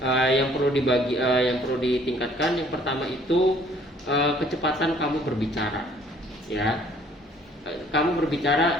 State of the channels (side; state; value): both; normal; correlation 0.59